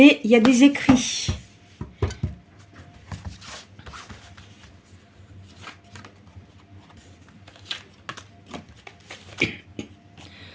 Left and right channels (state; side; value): identical; both; correlation 1.00